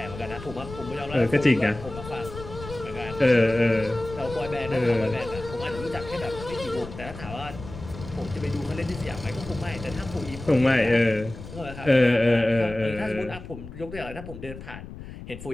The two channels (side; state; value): left; noise; rumble, 13 dB below the sound